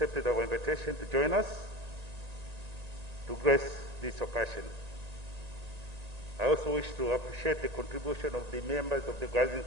our invitation to join us to grace this occasion. I also wish to appreciate the contribution of the members of the Organizing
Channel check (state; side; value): late; left; 1.9 ms